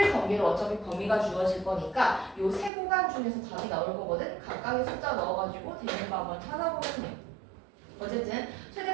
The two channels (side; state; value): left; drops out; at 2.7 s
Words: 경계로 어차피 범위가 주어질 거니까 요 세 구간 중에서 답이 나올 거거든. 각각의 숫자 넣어가지고 되는 거 한번 찾아보면 돼요. 어쨌든